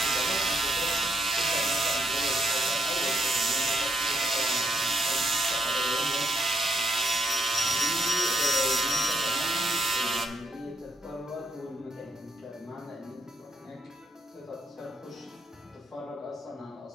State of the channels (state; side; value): normal; both; correlation 0.76